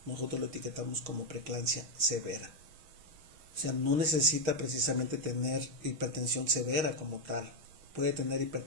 nosotros lo etiquetamos como preeclampsia severa. O sea, no necesita precisamente tener hipertensión severa como tal. Puede tener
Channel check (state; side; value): late; left; 6.4 ms